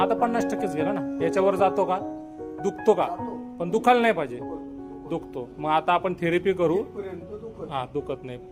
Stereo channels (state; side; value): identical; both; correlation 1.00